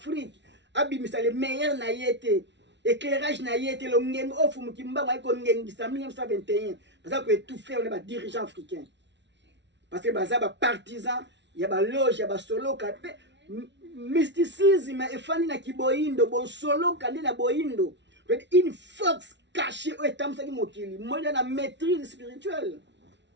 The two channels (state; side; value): late; left; 0.51 ms